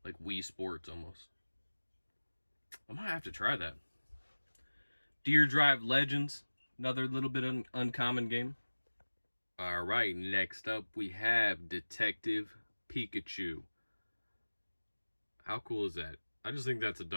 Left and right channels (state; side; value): inverted; both; correlation -1.00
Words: Wii Sports almost. I might have to try that. Deer Drive Legends. Another little bit uncommon game. Alright, next up we have Detective Pikachu. How cool is that? I just think that's a